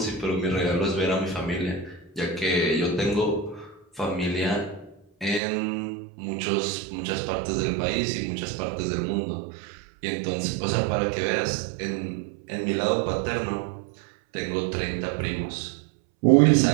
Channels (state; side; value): drops out; left; at 5.4 s